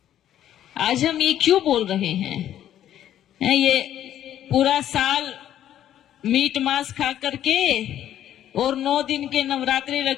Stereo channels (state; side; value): quieter; right; 11.3 dB